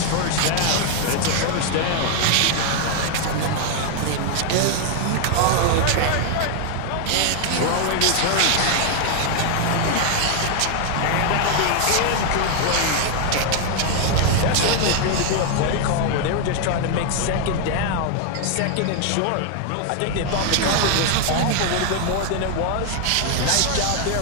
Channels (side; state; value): both; different; correlation 0.00